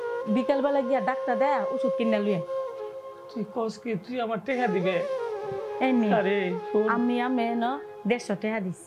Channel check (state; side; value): identical; both; correlation 1.00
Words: বিকেল বেলা গিয়া ডাক্তার দেয় ওষুধ কিনে লুয়ে। তুই কস কি তুই আমার টাকা দিবে? আমি আমি না 150 টাকা